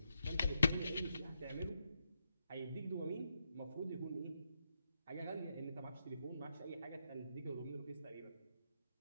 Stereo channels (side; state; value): both; inverted; correlation -0.81